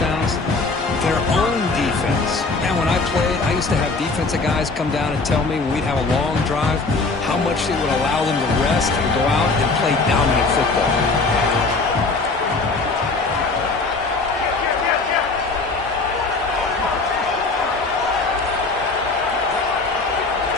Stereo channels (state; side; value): quieter; right; 3.8 dB